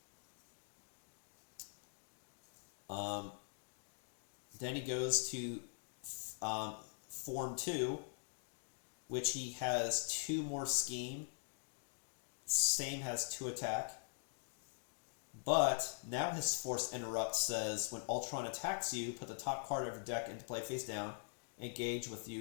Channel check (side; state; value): right; silent; digital silence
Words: Then he goes to Form 2, which he has 2 more scheme. Same has 2 attack. But now his Force Interrupt says when Ultron attacks you, put the top card of your deck into play face down. Engage with